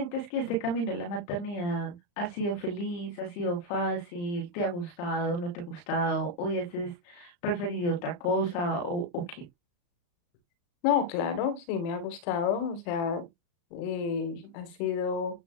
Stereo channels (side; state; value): right; late; 35 ms